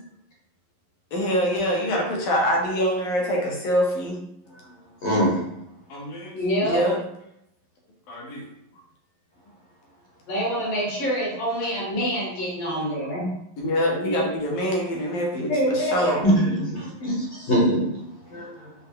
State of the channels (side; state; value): right; late; 11 ms